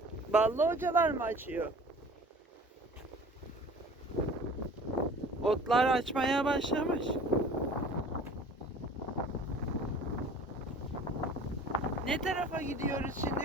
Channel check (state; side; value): normal; both; correlation 0.45